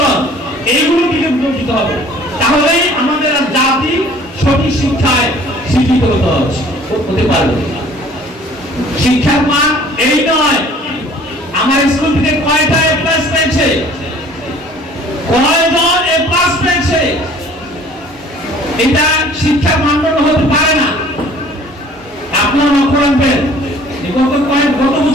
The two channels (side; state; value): both; normal; correlation 0.52